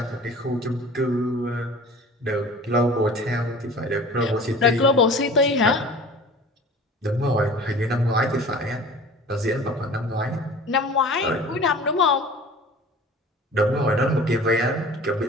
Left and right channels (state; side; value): normal; both; correlation 0.42